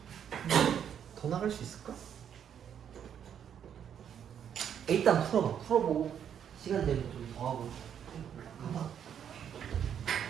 더 나갈 수 있을까? 일단 풀어봐. 풀어보고 시간 되면 좀 더 하고. 가봐.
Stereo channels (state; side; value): quieter; left; 8.7 dB